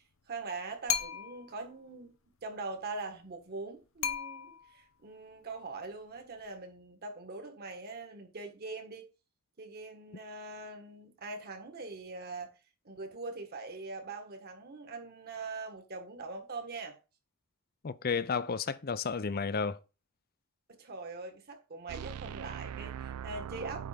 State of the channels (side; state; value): both; normal; correlation -0.10